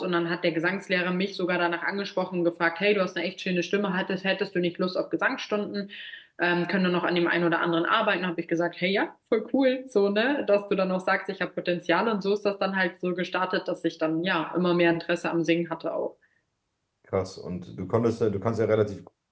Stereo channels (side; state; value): both; identical; correlation 1.00